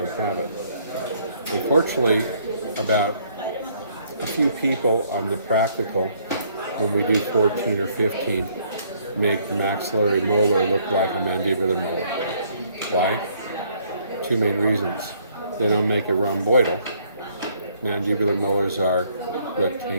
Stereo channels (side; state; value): both; inverted; correlation -0.65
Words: have it. Unfortunately, about a few people on the practical, when we do 14 or 15, make the maxillary molar look like a mandibular molar. Why? 2 main reasons. They don't make it rhomboidal. Mandibular molars are